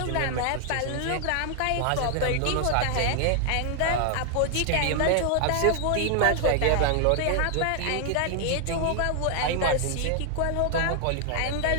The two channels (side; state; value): both; different; correlation 0.00